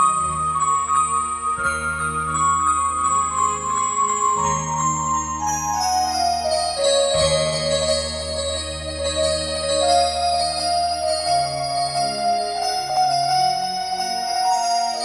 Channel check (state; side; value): identical; both; correlation 1.00